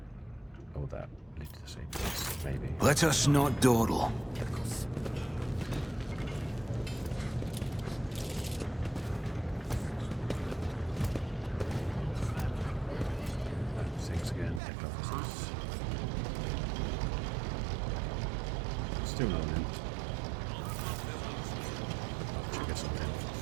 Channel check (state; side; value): drops out; left; at 14.6 s